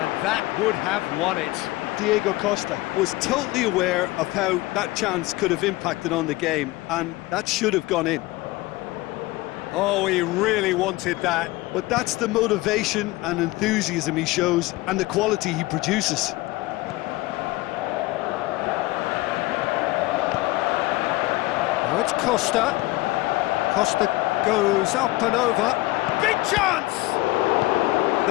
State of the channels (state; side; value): quieter; right; 19.6 dB